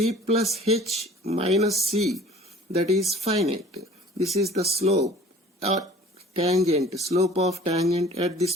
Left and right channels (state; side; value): normal; both; correlation 0.48